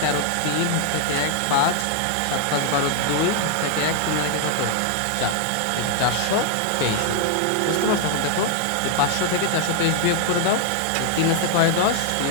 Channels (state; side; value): different; both; correlation 0.00